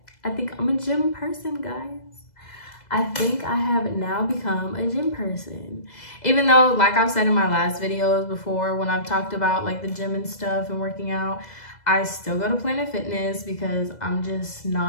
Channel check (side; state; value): right; late; 2.0 ms